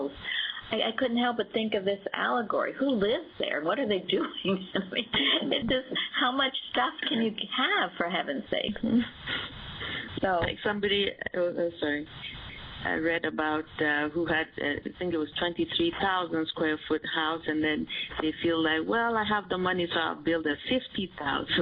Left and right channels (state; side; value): identical; both; correlation 1.00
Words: I couldn't help but think of this Allegory. Who lives there? What are they doing? I mean, it's just, how much stuff can you have, for heaven's sake? So, like somebody, sorry, I read about who had, I think it was 23,000 square foot house, and then they feel like, well, I have the money, so I'll build a